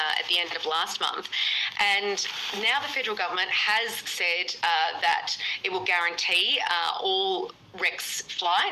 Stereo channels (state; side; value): identical; both; correlation 1.00